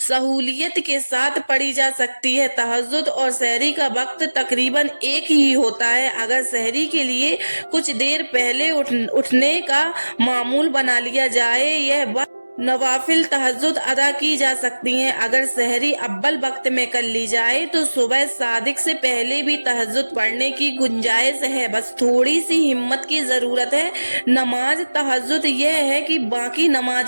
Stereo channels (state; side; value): inverted; both; correlation -1.00